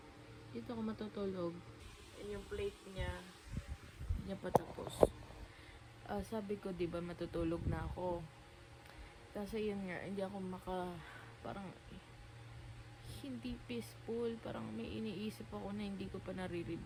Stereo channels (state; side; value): identical; both; correlation 1.00